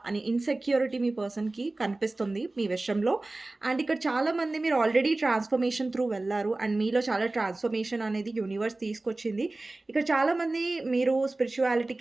అని ఇన్‌సెక్యూరిటీ మీ పర్సన్‌కి కనిపిస్తుంది మీ విషయంలో. అండ్ ఇక్కడ చాలామంది మీరు ఆల్రెడీ ట్రాన్స్‌ఫర్మేషన్ త్రూ వెళ్లారు. అండ్ మీలో చాలా ట్రాన్స్‌ఫర్మేషన్ అనేది యూనివర్స్ తీసుకొచ్చింది. ఇక్కడ చాలామంది మీరు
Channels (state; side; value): quieter; left; 3.0 dB